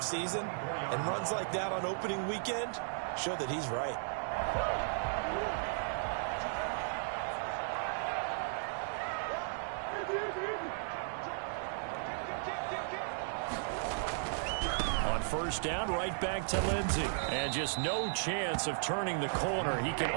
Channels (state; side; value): silent; left; 54 dB below the other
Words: And runs like that on opening weekend show that he's right. On first down, right back to Lindsay. And just no chance of turning the corner. He can